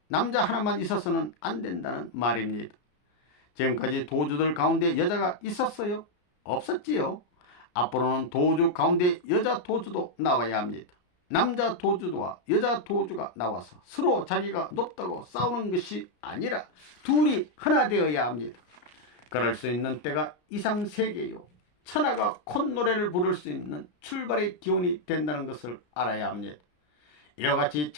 남자 하나만 있어서는 안 된다는 말입니다. 지금까지 도주들 가운데 여자가 있었어요? 없었지요. 앞으로는 도주 가운데 여자 도주도 나와야 합니다. 남자 도주와 여자 도주가 나와서 서로 자기가 높다고 싸우는 것이 아니라 둘이 하나 되어야 합니다. 그럴 수 있는 때가 이상세계요. 천하가 콧노래를 부를 수 있는 출발의 기원이 된다는 것을 알아야 합니다. 이와 같이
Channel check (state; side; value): late; right; 34 ms